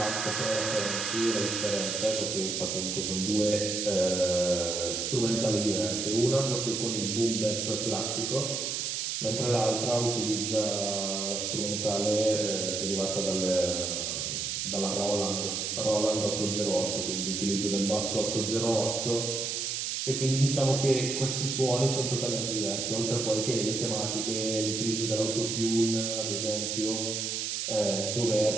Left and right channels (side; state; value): right; noise; hiss, 2 dB below the sound